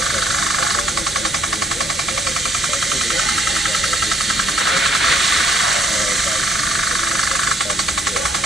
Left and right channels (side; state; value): both; normal; correlation 0.67